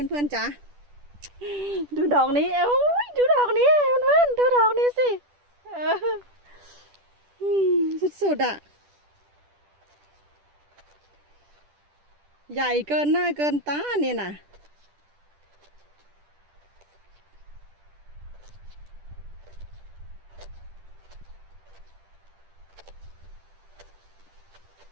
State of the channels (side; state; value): left; late; 10 ms